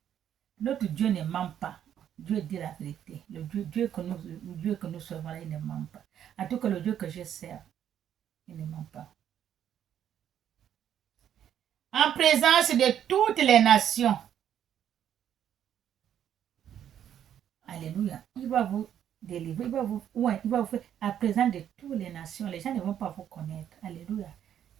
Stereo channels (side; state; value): left; quieter; 9.9 dB